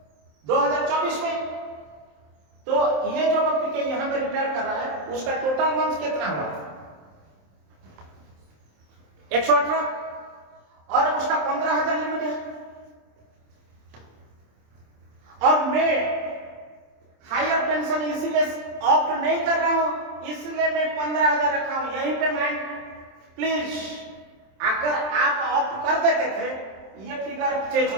2024 में। तो ये जो पीके यहां पे रिटायर कर रहा है, उसका टोटल मंथ कितना हुआ? 118 और उसका 15,000 लिमिट है। और मैं हायर पेंशन इसीलिए ऑप्ट नहीं कर रहा हूं, इसलिए मैं 15,000 रखा हूं। यहीं पे मैं प्लीज, अगर आप ऑप्ट कर देते थे ये फिगर चेंज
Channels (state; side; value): late; left; 27 ms